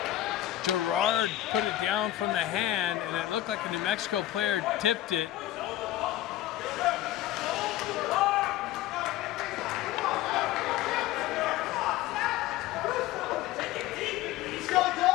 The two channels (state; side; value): quieter; right; 14.0 dB